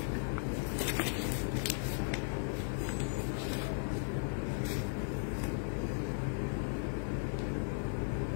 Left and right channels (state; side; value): silent; right; 53 dB below the other